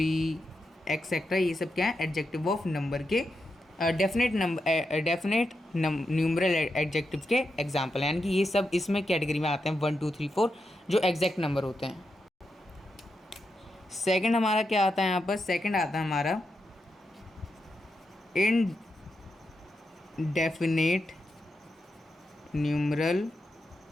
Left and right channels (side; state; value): both; normal; correlation 0.86